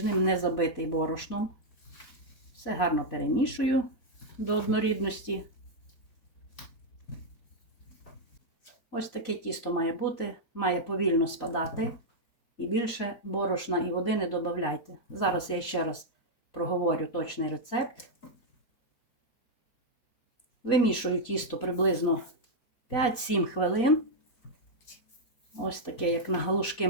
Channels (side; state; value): right; late; 4.5 ms